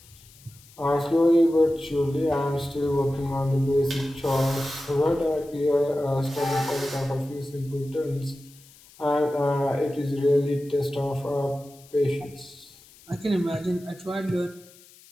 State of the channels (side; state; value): left; noise; hiss, 24 dB below the sound